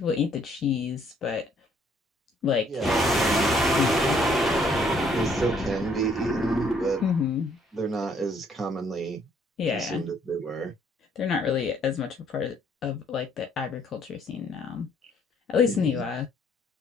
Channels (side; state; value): both; normal; correlation 0.65